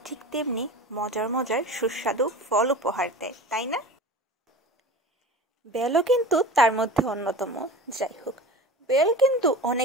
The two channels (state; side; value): normal; both; correlation 0.35